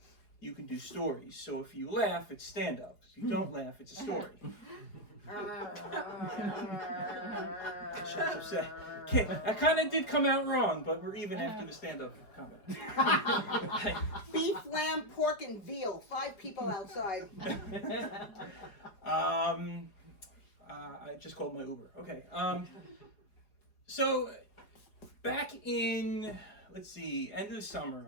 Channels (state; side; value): late; right; 4.9 ms